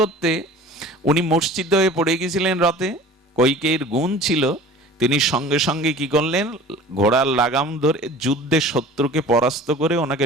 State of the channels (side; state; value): both; normal; correlation 0.42